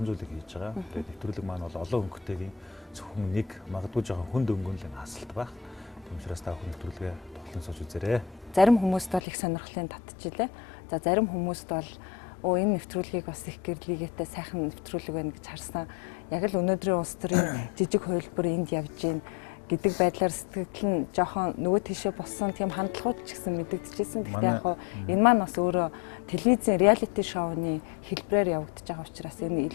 зүйлийг хийж байгаа. Тэгээд нэвтрүүлэг маань бол олон өнгөтэйгийн зөвхөн нэг магадгүй жоохон хүнд өнгөнлийн хасалт байх. Тийм учраас та бүхэн нэвтрүүлгээ тоглон сууж үзээрэй. Зарим хүмүүст бол их сонирхлын татчихлээ. За зарим хүмүүст бол энэ нэвтрүүлгийг бас их гэрлийгээтэй сайхан нэвтрүүлэг байна гэж харсан. Яг л өнөөдрийн улс төрийн жижиг хувилбар энд явж гин гэдэг байдлаар сэтгэл нь жоохон нөгөө тийшээ болсон тийм хандлагууд ч гэсэн мэдэгдэжсэн. Гэхдээ яг энэ маань бас өөрөө телевизийн реалити шоуны хэлбэрээр явагдаж байгаа учраас энэ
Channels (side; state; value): right; drops out; at 9.2 s